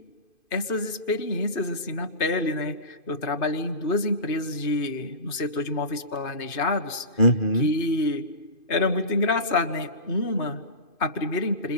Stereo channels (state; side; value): late; right; 2.5 ms